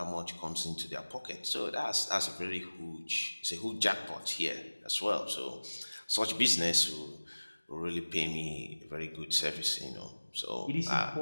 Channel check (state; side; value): inverted; both; correlation -1.00